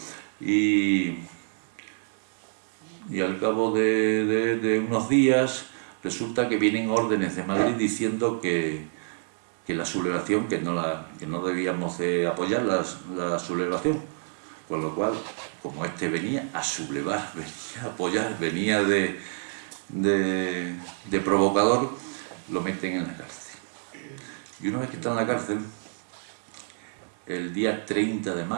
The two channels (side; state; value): left; silent; 59 dB below the other